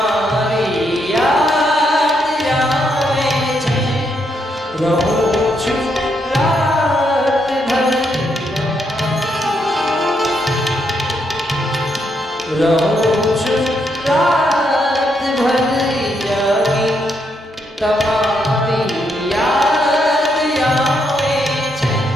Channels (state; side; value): normal; both; correlation 0.77